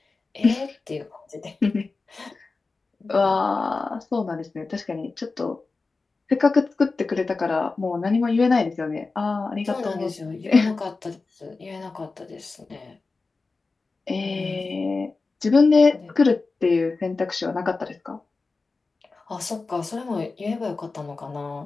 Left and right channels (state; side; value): quieter; right; 3.9 dB